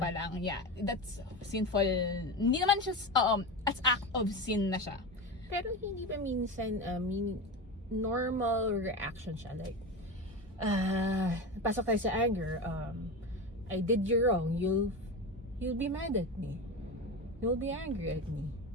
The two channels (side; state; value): both; normal; correlation 0.23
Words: lang. Yeah, that's sinful. Hindi naman siya, as act of sin na siya. Pero hindi ba minsan, normal reaction siya? Like, pasok tayo sa anger, I did you wrong, you'll be mad at me. You'll be angry at me.